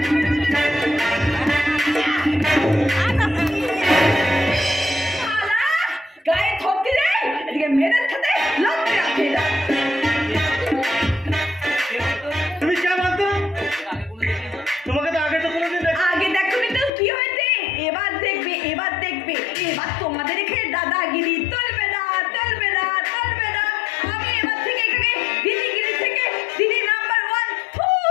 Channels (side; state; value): right; drops out; at 16.9 s